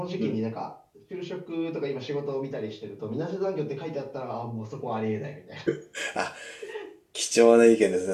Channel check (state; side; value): identical; both; correlation 1.00